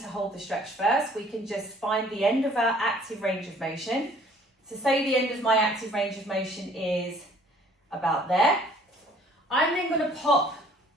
hold the stretch first. We can just find the end of our active range of motion. So say the end of my active range of motion is about there. I'm then going to pop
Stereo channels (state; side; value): normal; both; correlation 0.56